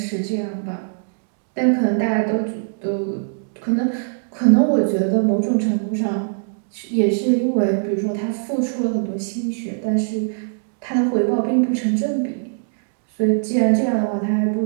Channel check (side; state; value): left; silent; digital silence